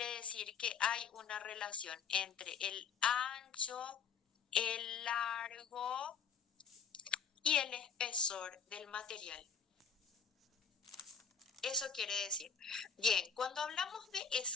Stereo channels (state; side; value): quieter; right; 6.7 dB